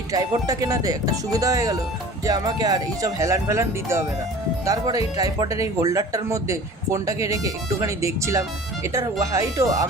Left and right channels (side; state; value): both; normal; correlation 0.43